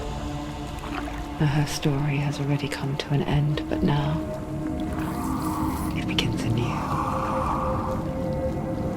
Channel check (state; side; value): identical; both; correlation 1.00